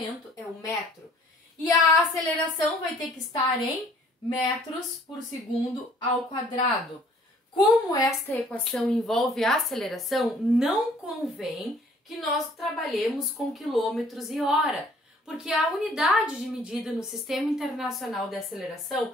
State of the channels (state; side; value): normal; both; correlation 0.57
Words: é o metro. E a aceleração vai ter que estar em metros por segundo ao quadrado. Como esta equação envolve a aceleração, não convém que nós trabalhemos com quilômetros e hora, porque a unidade de medida no Sistema Internacional de Aceleração